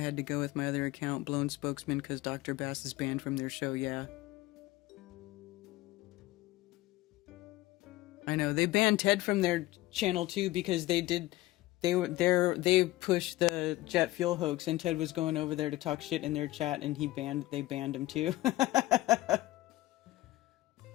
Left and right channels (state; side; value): quieter; right; 17.6 dB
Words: to go with my other account, Blown Spokesman, because Dr. Bass is banned from their show, yeah. I know, they banned Ted from their channel too, because they pushed the jet fuel hoax, and Ted was going over there to talk shit in their chat, and they banned him too.